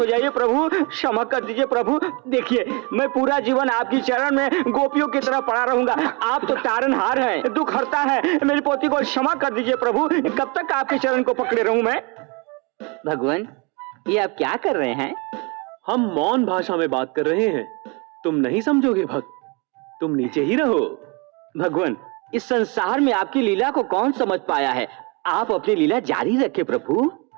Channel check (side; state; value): left; quieter; 30.3 dB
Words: जाइए प्रभु, क्षमा कर दीजिए प्रभु। देखिए मैं पूरा जीवन आपकी चरण में गोपियों की तरह पड़ा रहूंगा। आप तो तारनहार हैं, दुख हरता है। मेरी पोती को क्षमा कर दीजिए प्रभु। कब तक आपके चरण को पकड़े रहूं मैं? भगवान ये आप क्या कर रहे हैं? हम मौन भाषा में बात कर रहे हैं। तुम नहीं समझोगे भक्त, तुम नीचे ही रहो। भगवान इस संसार में आपकी लीला को कौन समझ पाया है? आप अपनी लीला जारी रखें प्रभु।